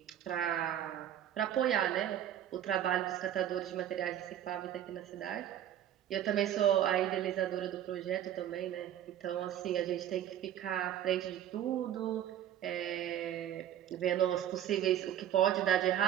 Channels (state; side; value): quieter; left; 10.9 dB